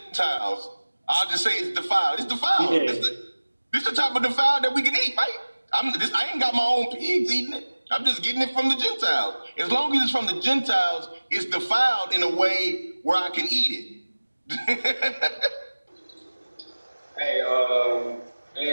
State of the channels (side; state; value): both; inverted; correlation -1.00